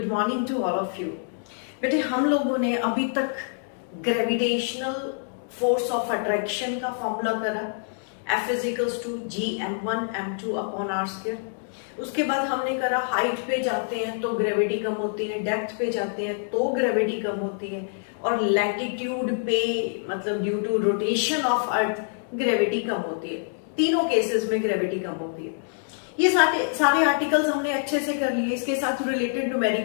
morning to all of you. बेटे हम लोगों ने अभी तक ग्रेविटेशनल फोर्स ऑफ अट्रैक्शन का फॉर्मूला करा, F is equals to G m1 m2 upon r square. उसके बाद हमने करा हाइट पे जाते हैं तो ग्रेविटी कम होती है, डेप्थ पे जाते हैं तो ग्रेविटी कम होती है, और लैटिट्यूड पे मतलब due to rotation of earth gravity कम होती है। तीनों केसेस में ग्रेविटी कम होती है। ये सारे आर्टिकल्स हमने अच्छे से कर लिए, इसके साथ रिलेटेड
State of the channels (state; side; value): silent; right; digital silence